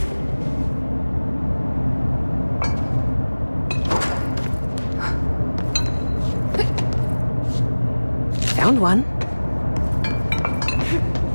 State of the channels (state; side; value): inverted; both; correlation -1.00